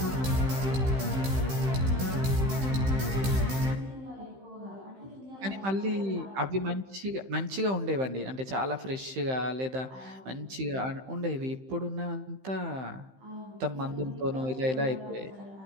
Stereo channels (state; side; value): late; left; 15 ms